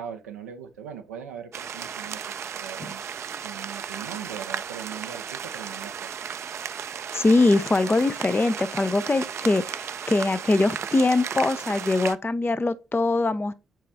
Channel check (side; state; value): both; normal; correlation 0.87